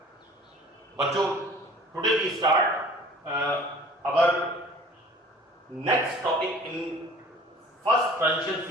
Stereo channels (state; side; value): normal; both; correlation 0.47